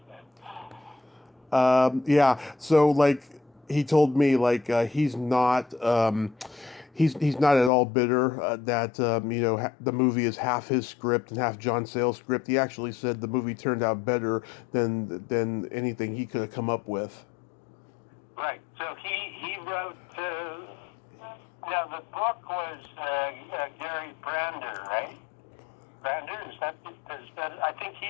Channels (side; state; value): right; drops out; at 7.7 s